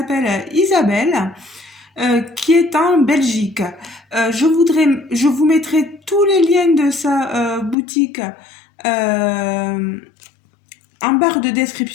Isabelle. Qui est en Belgique. Je vous mettrai tous les liens de sa boutique en barre de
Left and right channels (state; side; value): drops out; right; at 7.8 s